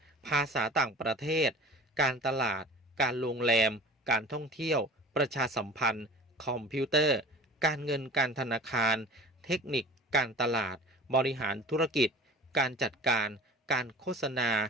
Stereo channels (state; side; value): normal; both; correlation 0.41